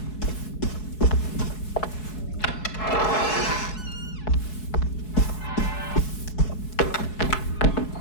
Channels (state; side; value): late; right; 4.7 ms